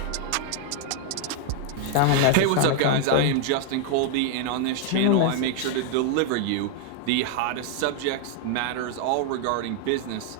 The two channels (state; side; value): different; both; correlation 0.00